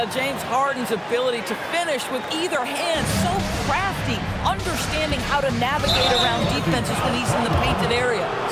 James Harden's ability to finish with either hand, so crafty, understanding how to navigate around defenses when he's in the painted area.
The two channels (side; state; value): both; identical; correlation 1.00